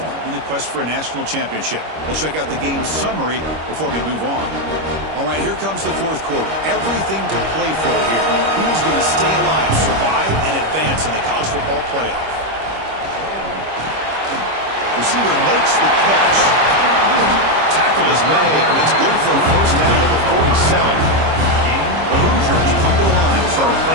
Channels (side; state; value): left; late; 25 ms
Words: in the quest for a national championship. Let's check out the game summary before we move on. All right, here comes the fourth quarter. Everything to play for here. Who is going to stay alive, survive, and advance in the college football playoff? Receiver makes the catch. Tackle is made, but that's good for a first down at the 47. The Hoosiers come to the line to start a